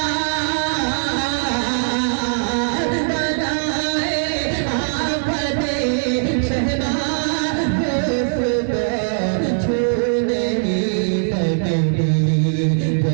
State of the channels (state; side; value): silent; left; digital silence